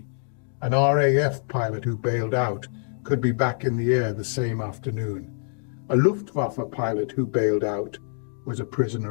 An RAF pilot who bailed out could be back in the air the same afternoon. A Luftwaffe pilot who bailed out was a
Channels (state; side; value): silent; right; 61 dB below the other